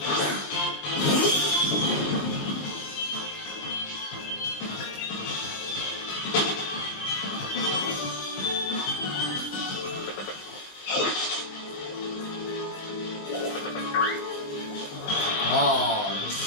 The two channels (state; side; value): late; right; 20 ms